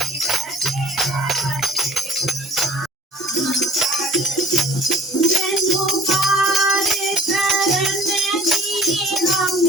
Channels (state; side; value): normal; both; correlation 0.50